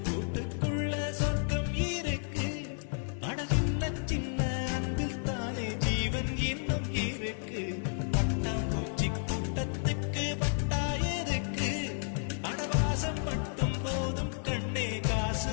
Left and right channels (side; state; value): right; silent; 56 dB below the other